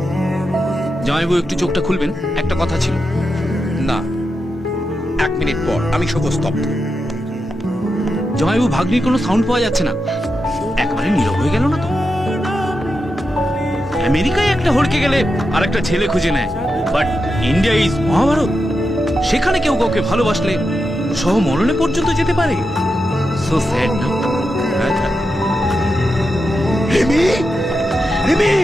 জামাইবাবু একটু চোখটা খুলবেন, একটা কথা ছিল। না, 1 মিনিট পর আমি শোক স্তব্ধ। জামাইবাবু ভাগ্নির কোনো সাউন্ড পাওয়া যাচ্ছে না, একবারে নীরব হয়ে গেল না তো? আমেরিকায় একটা হড়কে গেলে আর একটা ছেলে খুঁজে নেয়, বাট ইন্ডিয়া ইজ মহাভারত। সেখানে কেউ কাউকে ভালোবাসলে সহ মরণে পর্যন্ত যেতে পারে। সো স্যাড না? রিমি, রিমি,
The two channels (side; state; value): both; normal; correlation 0.88